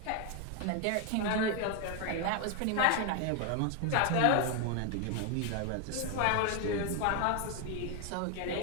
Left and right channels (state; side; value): different; both; correlation 0.01